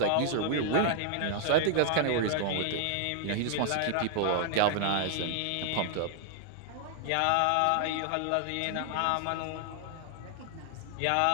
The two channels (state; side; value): different; both; correlation 0.00